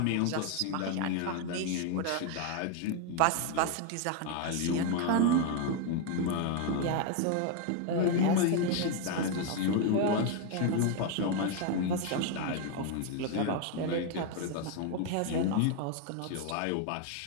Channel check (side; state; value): both; different; correlation 0.01